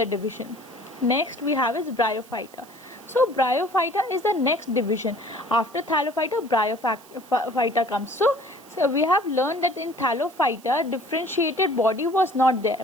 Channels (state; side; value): noise; right; hiss, 24 dB below the sound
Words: division. Next we have is Bryophyta. So Bryophyta is the next division. After Thallophyta, Bryophyta comes. So we have learned that in Thallophyta differentiated body was not